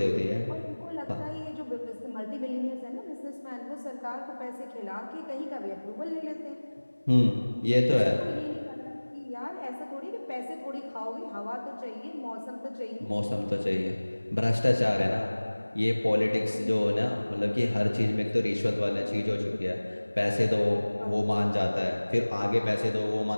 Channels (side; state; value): both; inverted; correlation -1.00